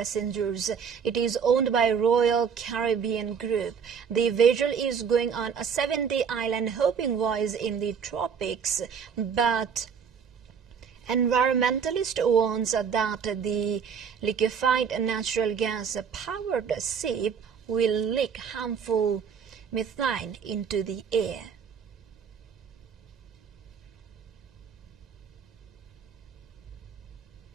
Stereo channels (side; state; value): left; quieter; 6.8 dB